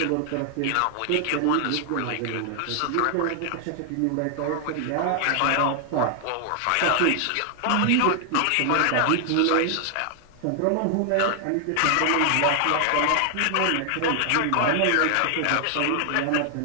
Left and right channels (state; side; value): different; both; correlation 0.00